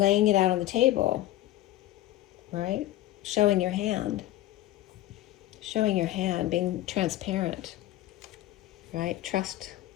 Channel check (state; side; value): quieter; right; 15.1 dB